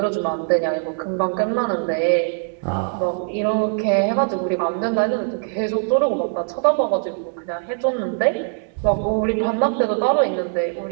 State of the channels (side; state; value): left; silent; 65 dB below the other